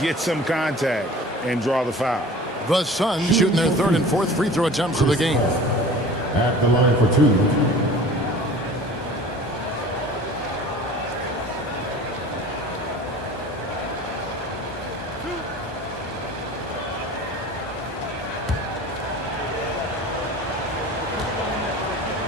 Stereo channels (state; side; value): normal; both; correlation 0.42